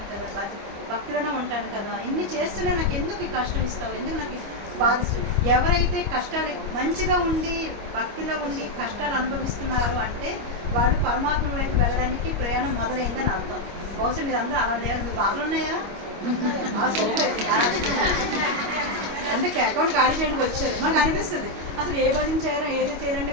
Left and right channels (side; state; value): left; late; 25 ms